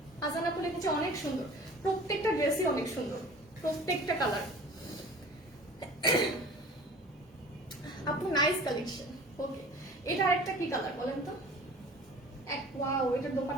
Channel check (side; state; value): both; normal; correlation 0.43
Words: আজান আপু লিখেছে অনেক সুন্দর, প্রত্যেকটা ড্রেসই অনেক সুন্দর, প্রত্যেকটা কালার। আপু নাইস কালেকশন। ওকে, এটা আরেকটা কি কালার বলেন তো? ওয়াও, এটার